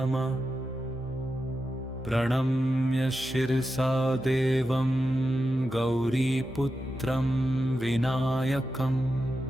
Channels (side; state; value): both; normal; correlation 0.89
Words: प्रणम्य शिरसा देवं गौरीपुत्रं विनायकं